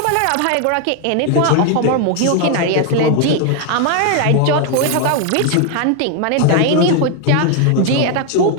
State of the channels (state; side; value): different; both; correlation 0.01